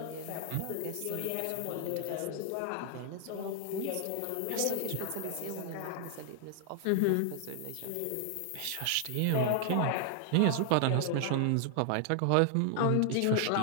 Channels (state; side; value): different; both; correlation 0.00